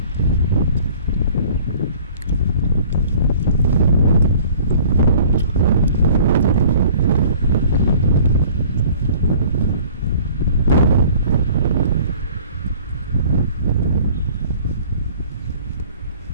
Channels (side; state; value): both; inverted; correlation -0.51